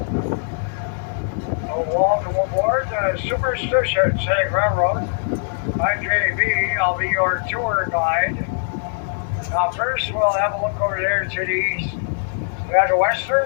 Welcome aboard the Superstition Scenic Railroad. I'm JB. I'll be your tour guide. Now, first, we'll have a look over there to the east. We have the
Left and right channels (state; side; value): silent; right; digital silence